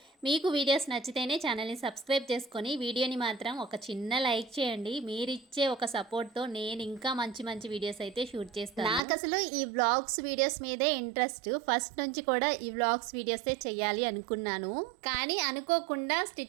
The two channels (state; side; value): drops out; left; at 9.0 s